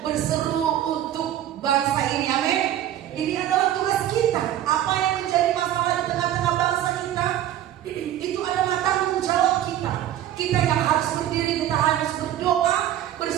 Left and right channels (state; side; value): quieter; left; 12.0 dB